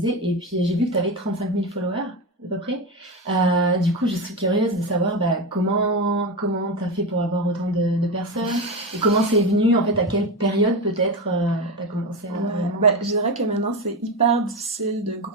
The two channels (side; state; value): both; normal; correlation 0.17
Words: et puis j'ai vu que t'avais 35 000 followers, à peu près. Du coup, je suis curieuse de savoir comment t'as fait pour avoir autant de personnes, et comment c'est venu, en fait, à quelle période peut-être t'as commencé à... Je dirais que maintenant, c'est hyper difficile de